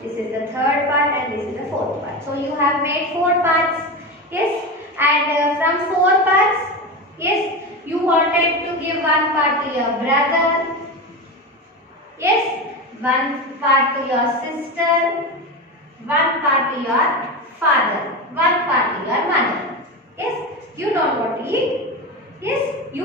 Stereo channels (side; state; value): both; normal; correlation 0.21